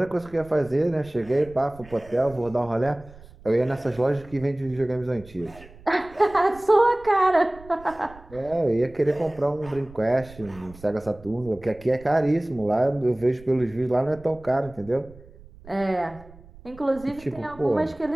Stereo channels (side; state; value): right; noise; rumble, 21 dB below the sound